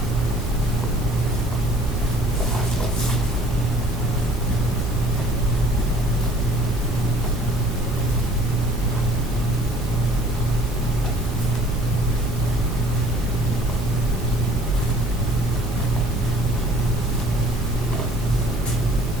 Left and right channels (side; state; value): both; normal; correlation 0.54